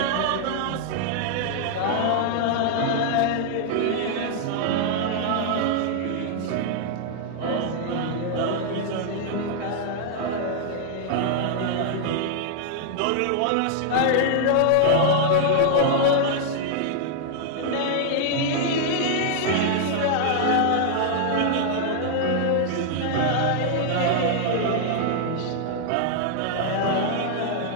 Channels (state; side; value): different; both; correlation -0.01